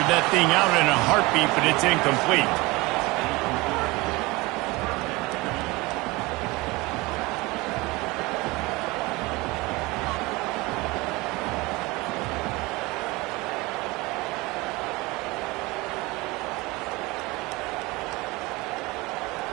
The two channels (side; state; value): left; quieter; 22.8 dB